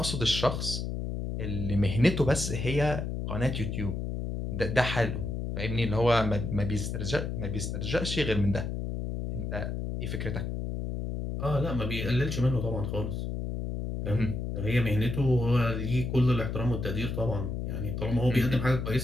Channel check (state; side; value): noise; left; hum, 3 dB below the sound